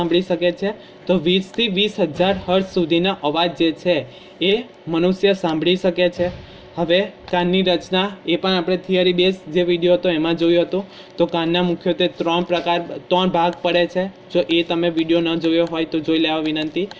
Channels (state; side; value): identical; both; correlation 1.00